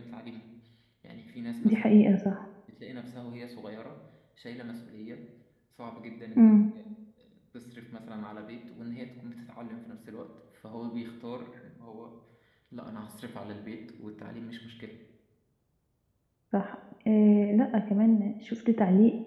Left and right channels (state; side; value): identical; both; correlation 1.00